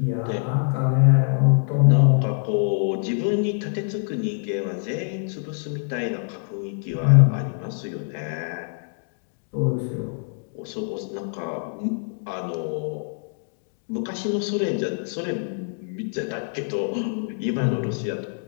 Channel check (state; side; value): silent; right; 62 dB below the other